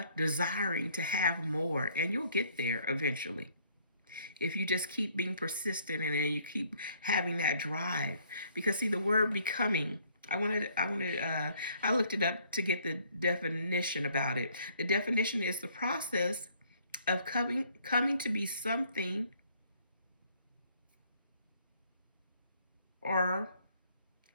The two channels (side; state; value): both; inverted; correlation -0.63